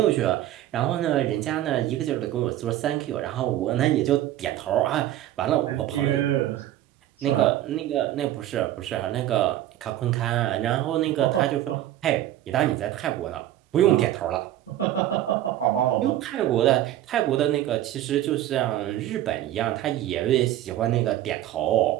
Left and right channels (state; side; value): quieter; left; 13.3 dB